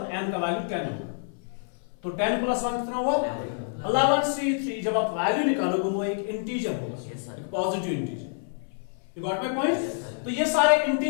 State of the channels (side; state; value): right; silent; 60 dB below the other